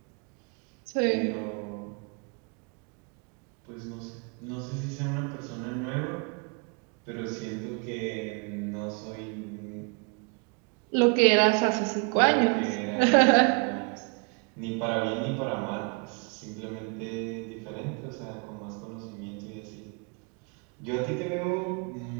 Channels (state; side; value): quieter; left; 34.7 dB